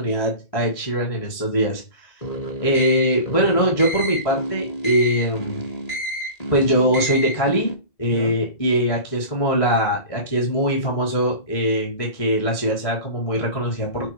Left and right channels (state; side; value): late; right; 2.0 ms